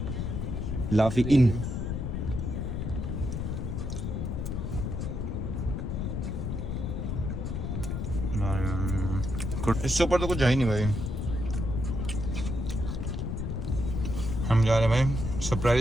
लाफी इन। इससे ऊपर तो कुछ है ही नहीं भाई। हम जा रहे हैं भाई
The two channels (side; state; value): left; noise; rumble, 2 dB below the sound